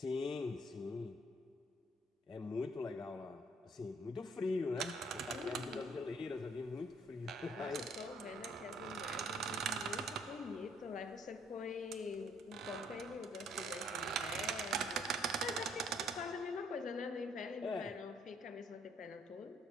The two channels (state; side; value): normal; both; correlation 0.64